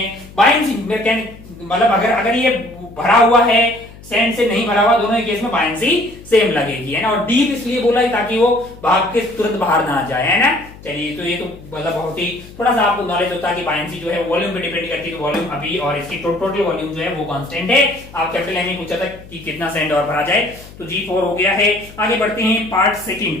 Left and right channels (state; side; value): noise; left; hum, 19 dB below the sound